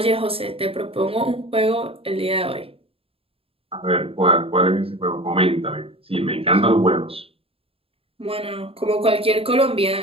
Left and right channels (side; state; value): left; late; 0.27 ms